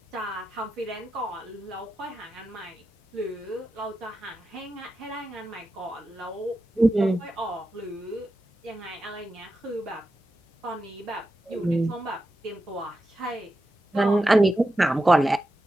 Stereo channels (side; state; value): both; normal; correlation 0.90